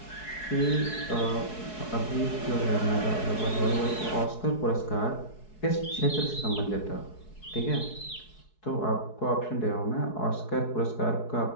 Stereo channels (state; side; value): late; right; 4.7 ms